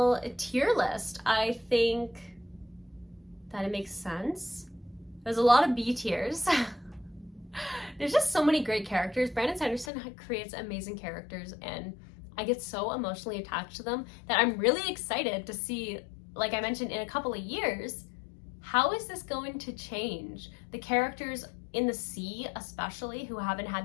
tier list. I think that it makes sense. There's a lot of B tiers. There's just so many great characters. Brandon Sanderson creates amazing characters, and I get so emotionally attached to them that I'm really excited to see, like I mentioned, in a couple of years, how is this going to change? The characters in the sea, especially, who haven't had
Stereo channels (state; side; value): drops out; right; at 9.9 s